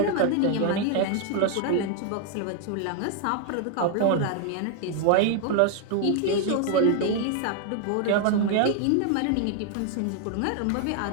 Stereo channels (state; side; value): different; both; correlation 0.00